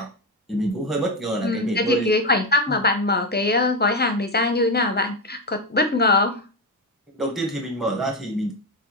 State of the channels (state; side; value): normal; both; correlation 0.12